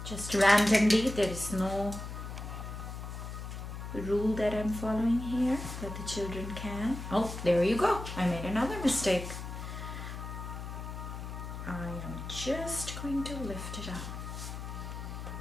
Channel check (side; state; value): left; noise; hum, 8 dB below the sound